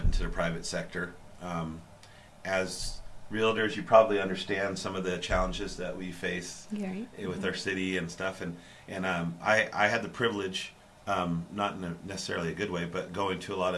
into the private sector. As realtors, you probably understand some of the challenges that we face with our city and stuff. And I had the privilege, not in necessarily a good way, but going to a lot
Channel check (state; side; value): identical; both; correlation 1.00